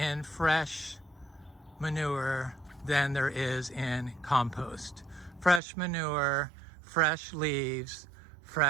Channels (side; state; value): left; drops out; at 5.6 s